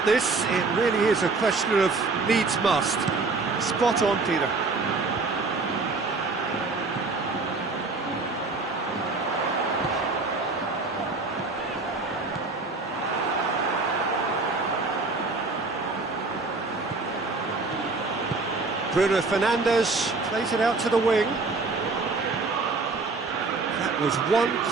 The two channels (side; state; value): left; quieter; 3.8 dB